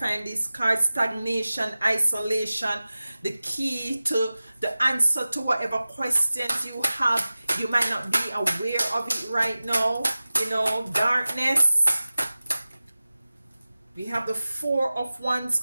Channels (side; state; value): both; inverted; correlation -0.96